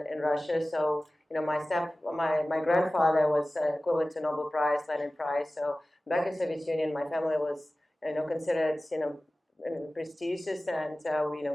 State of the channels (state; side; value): normal; both; correlation 0.96